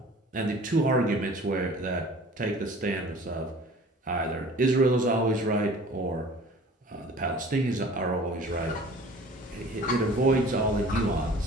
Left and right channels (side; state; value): both; normal; correlation 0.46